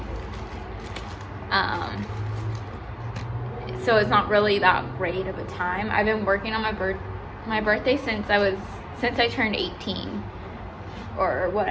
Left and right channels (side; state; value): both; identical; correlation 1.00